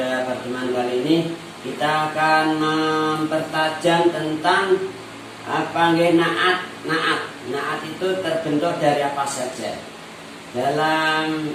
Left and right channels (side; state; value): both; identical; correlation 1.00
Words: pertemuan kali ini kita akan mempertajam tentang apa nggih naat. Naat itu terbentuk dari apa saja. Dalam